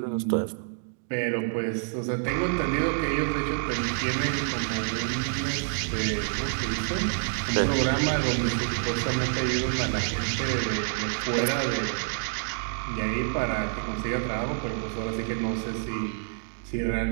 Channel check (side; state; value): left; silent; digital silence